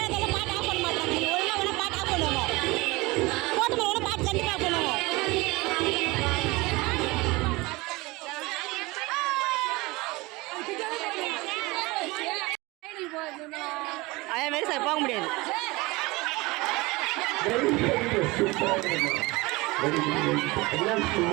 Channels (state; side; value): quieter; left; 22.8 dB